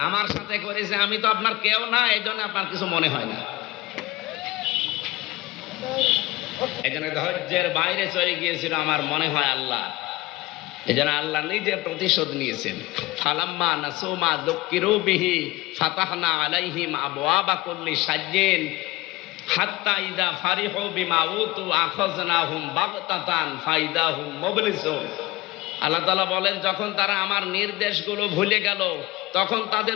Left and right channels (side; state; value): right; quieter; 19.4 dB